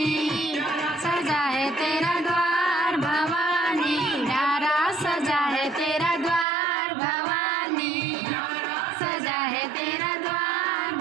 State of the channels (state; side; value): drops out; left; at 6.5 s